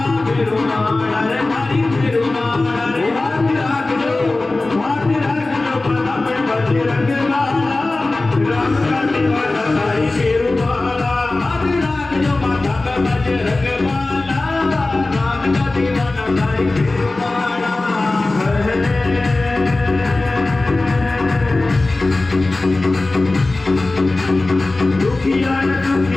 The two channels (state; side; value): quieter; right; 3.1 dB